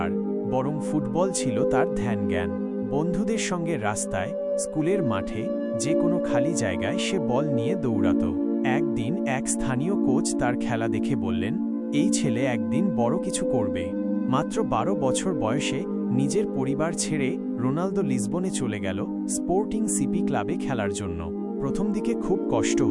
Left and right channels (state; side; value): identical; both; correlation 1.00